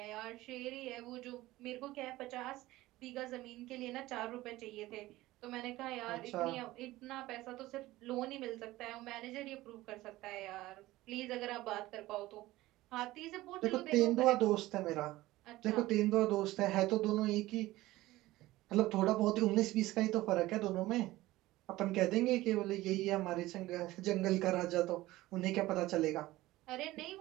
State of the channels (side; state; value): left; quieter; 17.6 dB